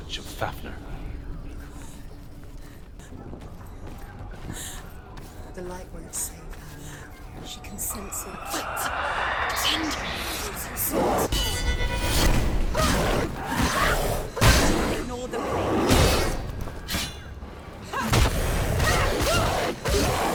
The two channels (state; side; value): identical; both; correlation 1.00